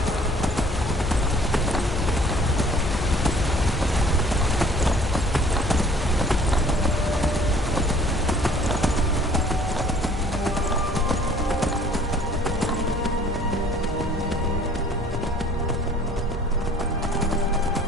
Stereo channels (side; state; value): both; normal; correlation 0.53